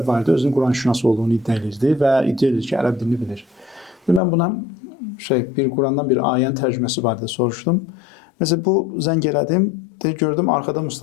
var idi, özünün Quran-şünas olduğunu iddia edirdi və iddia edir ki, ərəb dilini bilir. Mən buna bir Qurandan bir ayənin tərcüməsi barədə soruşdum. Məsələn, bu zəng elədim, gördüm arkada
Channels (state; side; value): drops out; right; at 4.2 s